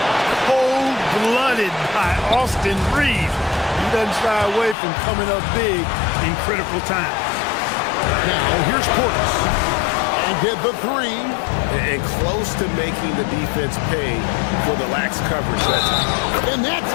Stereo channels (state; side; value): drops out; right; at 4.8 s